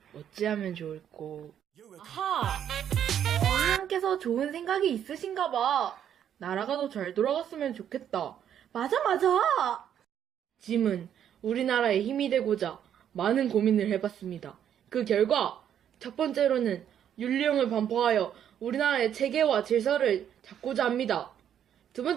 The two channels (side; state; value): left; quieter; 9.5 dB